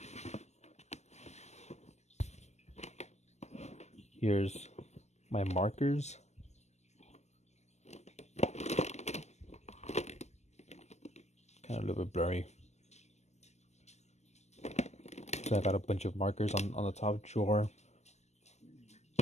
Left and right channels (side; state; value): right; late; 0.33 ms